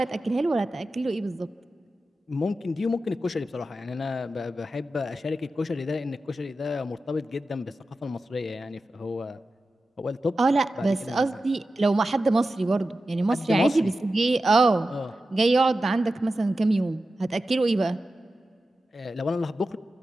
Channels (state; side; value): normal; both; correlation 0.92